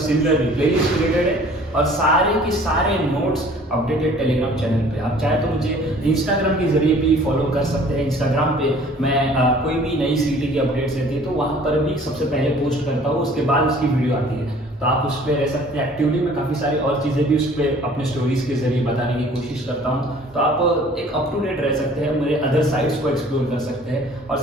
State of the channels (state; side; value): normal; both; correlation 0.52